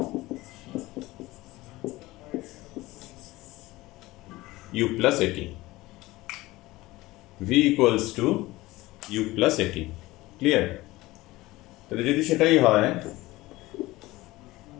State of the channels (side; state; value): right; quieter; 19.1 dB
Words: U plus AT. V equals to U plus AT. Clear? তাহলে যদি সেটাই হয়,